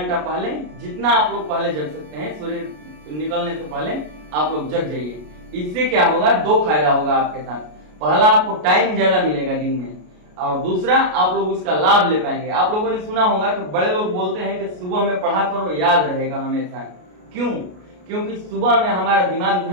पहले, जितना आप लोग पहले जग सकते हैं, सूर्य निकलने से पहले आप लोग जग जाइए। इससे क्या होगा? 2 फायदा होगा आपके साथ। पहला, आपको टाइम ज्यादा मिलेगा दिन में, और दूसरा आप लोग उसका लाभ ले पाएंगे। आप लोगों ने सुना होगा कि बड़े लोग बोलते हैं कि सुबह में पढ़ा करो, याद रहेगा हमेशा। क्यों? क्योंकि सुबह में हमारा दिमाग जो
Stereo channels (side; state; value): left; late; 33 ms